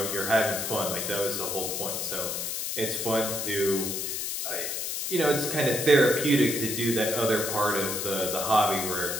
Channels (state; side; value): noise; left; hiss, 3 dB below the sound